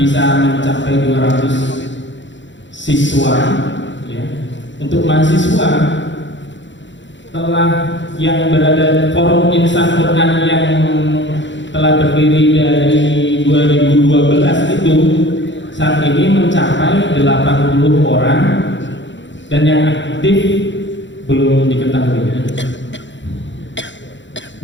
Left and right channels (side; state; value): right; late; 0.54 ms